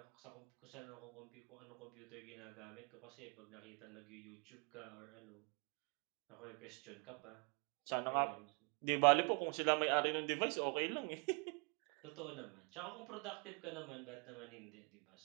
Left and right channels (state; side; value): quieter; left; 36.0 dB